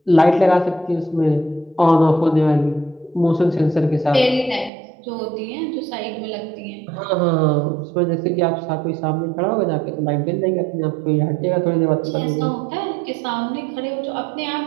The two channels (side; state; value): left; drops out; at 4.7 s